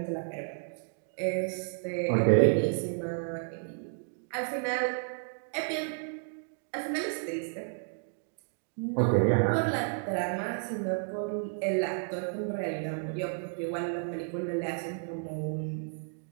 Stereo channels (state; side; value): silent; left; 56 dB below the other